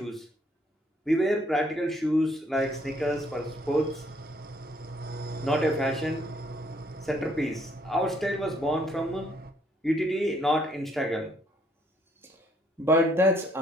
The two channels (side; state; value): both; normal; correlation 0.67